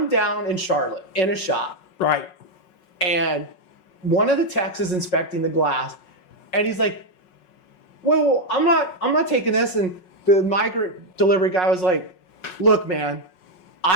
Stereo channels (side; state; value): right; late; 5.4 ms